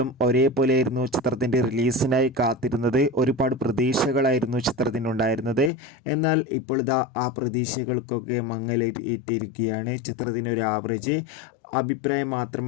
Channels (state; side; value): drops out; right; at 5.7 s